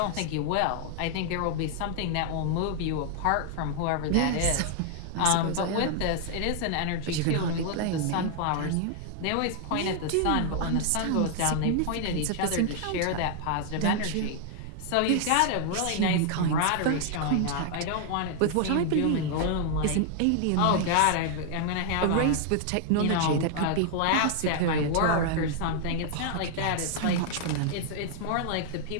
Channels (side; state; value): both; different; correlation 0.00